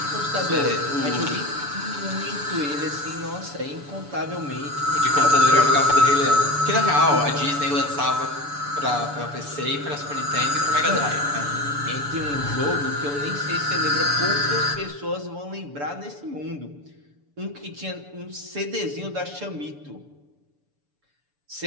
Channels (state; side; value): late; left; 6.9 ms